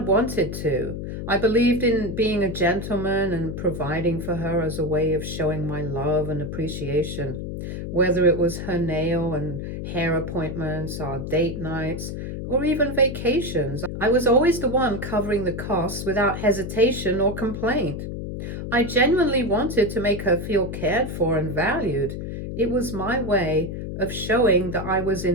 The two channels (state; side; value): noise; left; hum, 6 dB below the sound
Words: to. I believed in being a gentleman and providing for her as a way of showing my love and appreciation, whether it was her nail and hair appointments, our date nights, or even vacations. I was always the one covering the costs without hesitation or complaint. I genuinely wanted to make her feel cared for and valued. It was my way of showing that I was